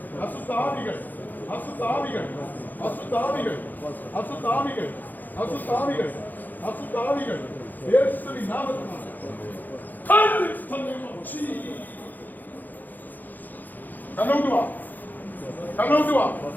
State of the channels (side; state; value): right; late; 0.085 ms